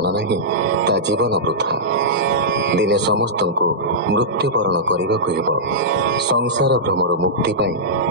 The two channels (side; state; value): both; normal; correlation -0.12